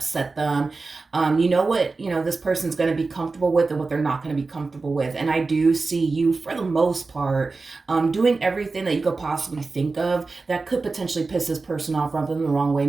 them. You know what this person's going to be comfortable with and what they're not going to be comfortable with. And I do see you, for the most part, doing everything that you could possibly think of that could potentially piss this person off, rub them the wrong way,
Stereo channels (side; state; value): left; quieter; 3.9 dB